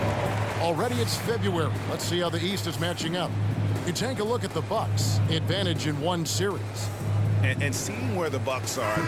Already it's February. Let's see how the East is matching up. You take a look at the Bucks. Advantage in one series. And seeing where the Bucks are,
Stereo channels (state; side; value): identical; both; correlation 1.00